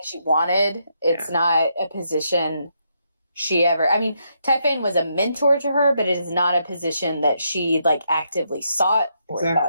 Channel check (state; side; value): inverted; both; correlation -0.78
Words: she wanted. It's not a position she ever... I mean, Typhane was a mentor to her, but it is not a position that she, like, actively sought or